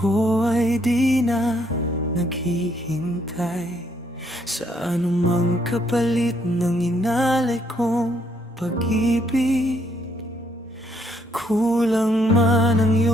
ay di na naghihintay sa anumang kapalit ng inalay kong pag-ibig. Kulang man ang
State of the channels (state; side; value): normal; both; correlation 0.70